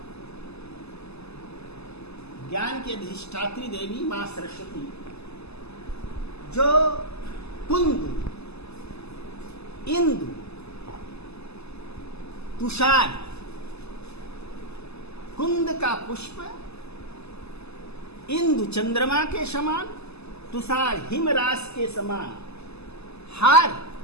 ज्ञान की अधिष्ठात्री देवी मां सरस्वती जो कुंद, इंदु, तुषार, कुंद का पुष्प, इंदु चंद्रमा के समान, तुषार हिमरास के समान, हार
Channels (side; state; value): right; late; 0.79 ms